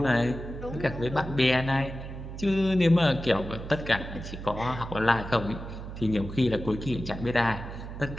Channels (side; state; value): right; noise; hum, 10 dB below the sound